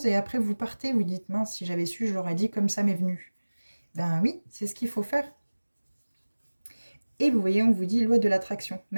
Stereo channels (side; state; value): both; inverted; correlation -1.00